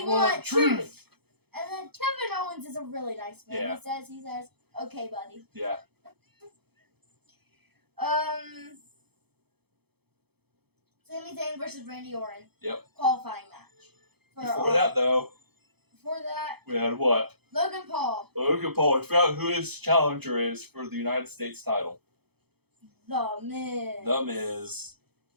want truth. truth. And then Kevin Owens is a really nice man. Yeah. He says, okay, buddy. Yeah. Sami Zayn versus Randy Orton. Yep. Qualifying match. Before that, we had what? Logan Paul. Logan Paul. I forgot who his challenger is for the United States title. The Miz. The Miz.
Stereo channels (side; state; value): left; late; 0.97 ms